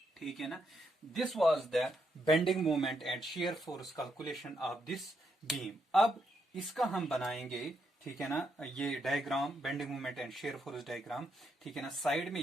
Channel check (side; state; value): both; normal; correlation 0.79